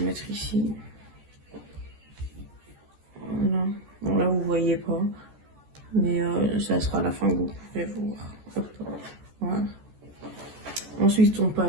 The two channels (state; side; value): late; left; 14 ms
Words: mettre ici. Voilà. Bon, là, vous voyez pas, mais ça sera à la fin que vous pourrez voir. Hop. Voilà. Ensuite, on